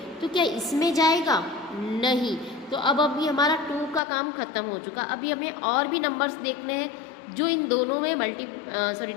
तो क्या इसमें जाएगा? नहीं. तो अब अभी हमारा 2 का काम ख़त्म हो चुका. अभी हमें और भी नंबर्स देखने हैं जो इन दोनों में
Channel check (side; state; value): right; drops out; at 4.0 s